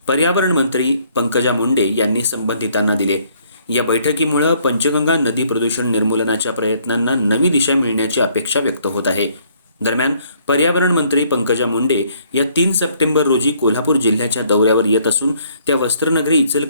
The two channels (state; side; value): inverted; both; correlation -0.64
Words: पर्यावरण मंत्री पंकजा मुंडे यांनी संबंधितांना दिले. या बैठकीमुळे पंचगंगा नदी प्रदूषण निर्मूलनाच्या प्रयत्नांना नवी दिशा मिळण्याची अपेक्षा व्यक्त होत आहे. दरम्यान पर्यावरण मंत्री पंकजा मुंडे या 3 सप्टेंबर रोजी कोल्हापूर जिल्ह्याच्या दौऱ्यावर येत असून त्या वस्त्रनगरी